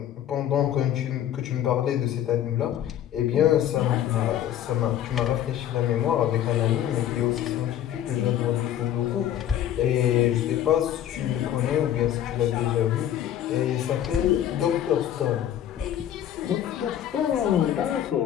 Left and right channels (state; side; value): quieter; right; 11.0 dB